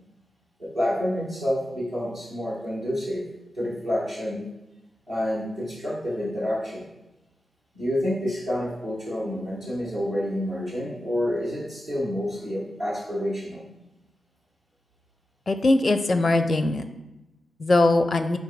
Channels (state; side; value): normal; both; correlation 0.92